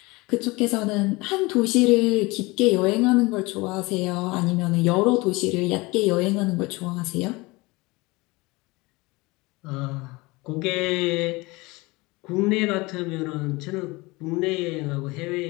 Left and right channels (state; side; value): quieter; right; 23.5 dB